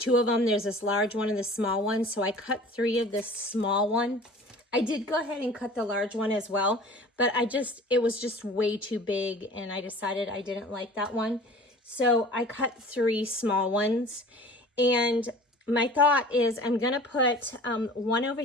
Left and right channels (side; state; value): both; normal; correlation 0.44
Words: of them. There's this large one and this small one. So I cut 3 of this small one. I did go ahead and cut the large one as well, but it was just way too big, and I decided I didn't like that one. So I cut 3 small ones, and my thought is I'm going to put 1 over